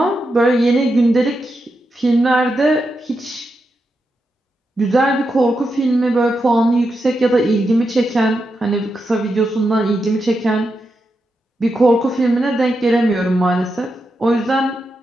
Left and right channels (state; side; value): normal; both; correlation 0.86